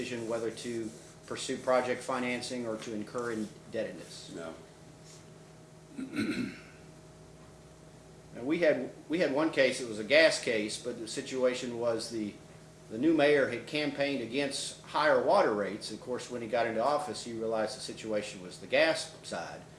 whether to pursue project financing or to incur indebtedness? No. Now, we had one case, it was a gas case, but the situation was the new mayor had campaigned against higher water rates. Of course, when he got into office, he realized the situation was the gas side.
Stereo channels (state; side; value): identical; both; correlation 1.00